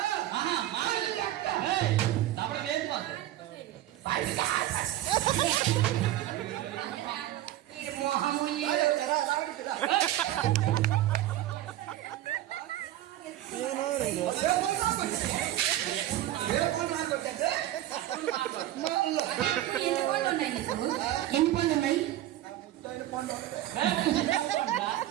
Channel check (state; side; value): quieter; left; 14.0 dB